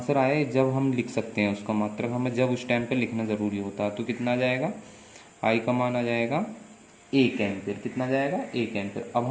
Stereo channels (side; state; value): both; identical; correlation 1.00